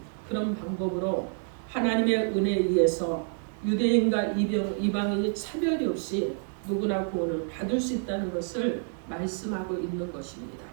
그런 방법으로 하나님의 은혜에 의해서 유대인과 이방인이 차별이 없이 누구나 구원을 받을 수 있다는 것을 말씀하고 있는 것입니다.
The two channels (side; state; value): left; silent; 59 dB below the other